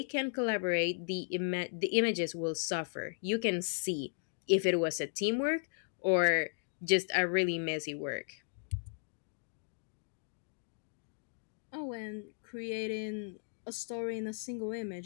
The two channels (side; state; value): right; silent; digital silence